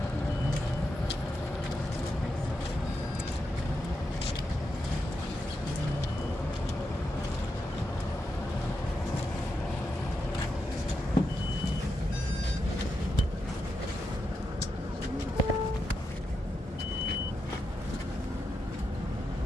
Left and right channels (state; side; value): normal; both; correlation 0.86